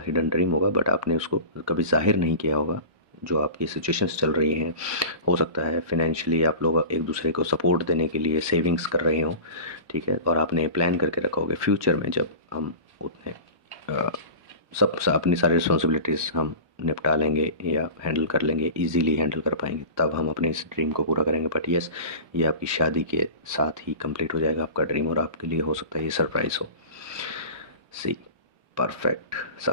हिडन ड्रीम होगा बट आपने उसको कभी जाहिर नहीं किया होगा। जो आपकी सिचुएशंस चल रही हैं, हो सकता है फाइनेंशियली आप लोग एक दूसरे को सपोर्ट देने के लिए सेविंग्स कर रहे हों, ठीक है। और आपने प्लान करके रखा होगा फ्यूचर में जब हम उतने अपनी सारी रिस्पॉन्सिबिलिटीज़ हम निपटा लेंगे या हैंडल कर लेंगे, इजीली हैंडल कर पाएंगे, तब हम अपने इस ड्रीम को पूरा करेंगे। बट यस, ये आपकी शादी के साथ ही कंप्लीट हो जाएगा आपका ड्रीम, और आपके लिए हो सकता है ये सरप्राइज़ हो। See perfect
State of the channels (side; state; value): left; late; 1.2 ms